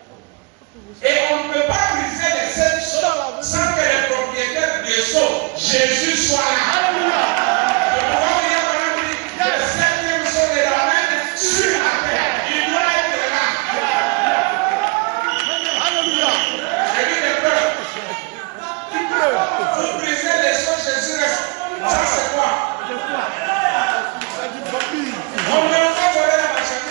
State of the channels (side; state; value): left; quieter; 28.6 dB